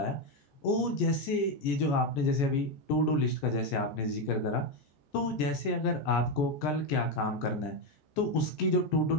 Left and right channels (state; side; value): late; right; 14 ms